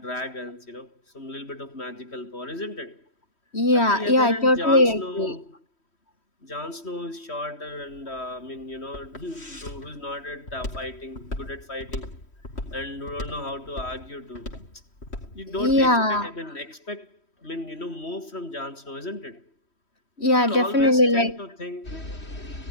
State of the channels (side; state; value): right; late; 3.1 ms